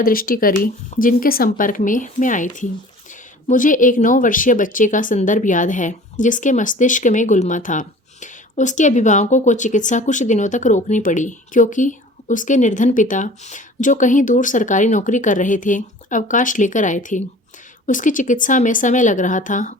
दृष्टि करी जिनके संपर्क में मैं आई थी। मुझे एक 9 वर्षीय बच्चे का संदर्भ याद है, जिसके मस्तिष्क में गुलमा था। उसके अभिभावकों को चिकित्सा कुछ दिनों तक रोकनी पड़ी, क्योंकि उसके निर्धन पिता, जो कहीं दूर सरकारी नौकरी कर रहे थे, अवकाश लेकर आए थे। उसकी चिकित्सा में समय लग रहा था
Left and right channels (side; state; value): both; normal; correlation 0.45